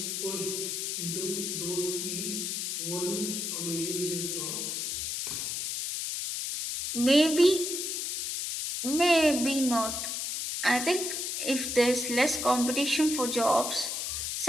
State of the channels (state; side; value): noise; left; hiss, 2 dB below the sound